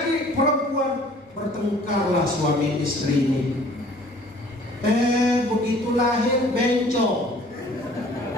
perempuan. Bertengkarlah suami istri ini. Begitu lahir bencong.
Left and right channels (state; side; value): normal; both; correlation 0.53